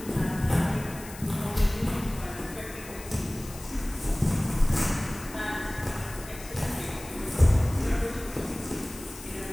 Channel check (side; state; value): left; noise; hiss, 16 dB below the sound